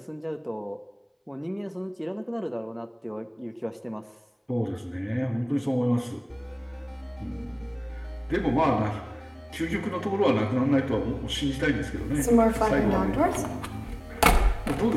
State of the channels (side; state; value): both; identical; correlation 1.00